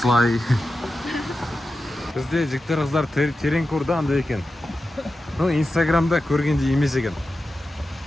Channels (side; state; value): both; normal; correlation 0.92